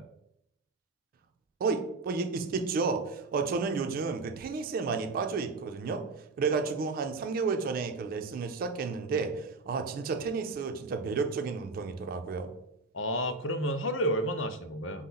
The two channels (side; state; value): left; quieter; 3.4 dB